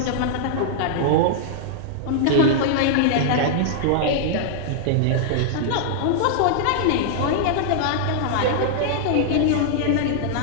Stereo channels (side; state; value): both; different; correlation -0.01